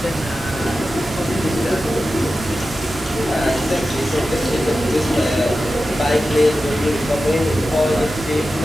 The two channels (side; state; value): both; normal; correlation 0.93